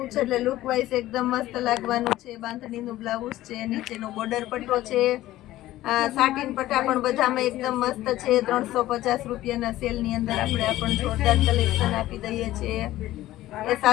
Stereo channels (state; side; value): quieter; right; 15.4 dB